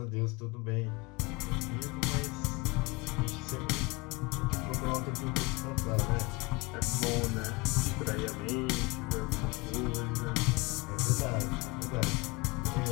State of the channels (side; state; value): right; quieter; 25.2 dB